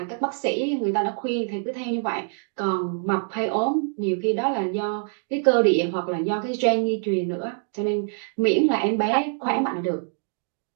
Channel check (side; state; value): left; silent; 56 dB below the other